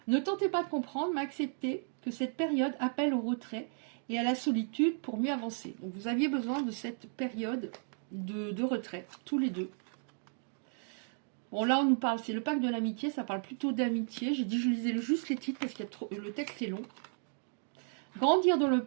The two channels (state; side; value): silent; left; 55 dB below the other